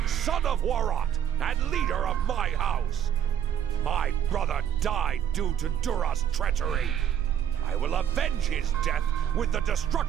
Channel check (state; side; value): quieter; left; 9.5 dB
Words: son of Warot, and leader of my house. My brother died due to Duras' treachery. I will avenge his death with the